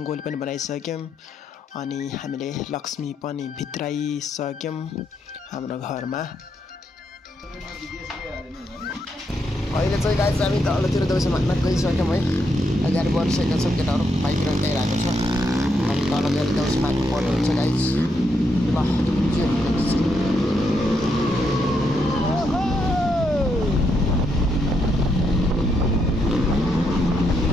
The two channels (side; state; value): both; normal; correlation 0.79